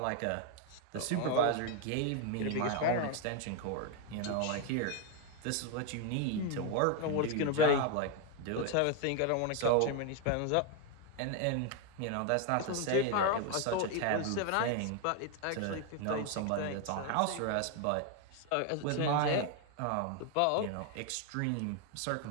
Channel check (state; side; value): different; both; correlation 0.01